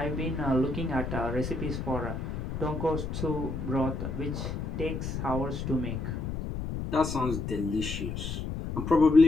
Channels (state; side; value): noise; left; rumble, 4 dB below the sound